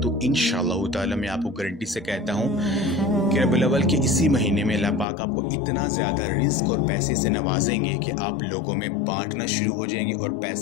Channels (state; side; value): drops out; right; at 5.1 s